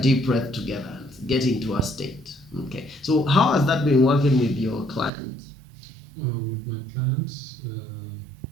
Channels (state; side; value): drops out; left; at 5.1 s